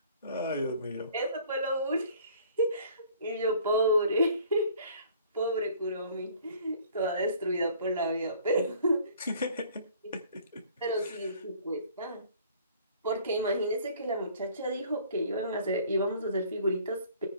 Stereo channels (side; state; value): both; inverted; correlation -0.53